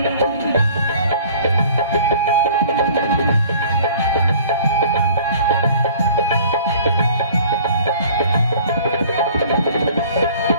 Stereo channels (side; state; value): both; inverted; correlation -0.49